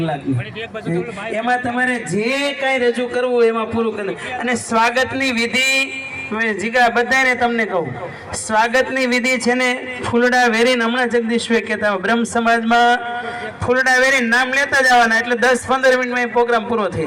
એમાં તમારે જે કાંઈ રજૂ કરવું એમાં પૂરું કરવું. અને સ્વાગતની વિધિ જીગા બધાને તમને કહું, સ્વાગતની વિધિ છે ને ફૂલડા વેરીને, હમણાં જગદીશભાઈ કહેતા બ્રહ્મ સમાજમાં ફૂલડા વેરીને નામ લેતા જવાના, એટલે 10-15 મિનિટમાં પ્રોગ્રામ પૂરો થઈ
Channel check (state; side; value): identical; both; correlation 1.00